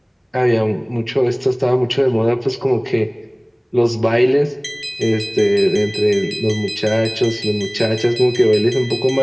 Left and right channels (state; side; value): identical; both; correlation 1.00